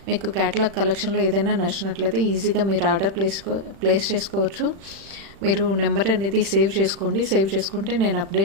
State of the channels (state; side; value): late; left; 36 ms